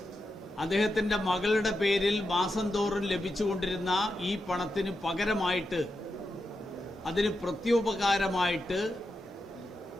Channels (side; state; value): both; normal; correlation 0.87